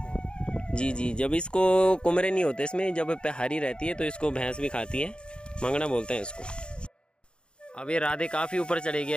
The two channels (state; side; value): late; right; 0.053 ms